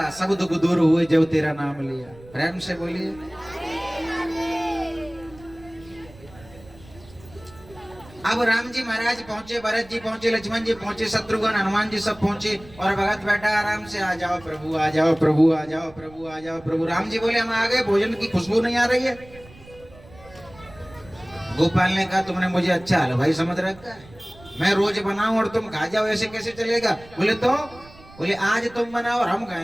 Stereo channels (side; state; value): right; noise; rumble, 22 dB below the sound